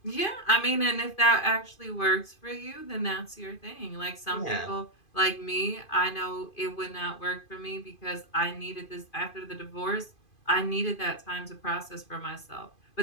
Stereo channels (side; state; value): right; late; 2.5 ms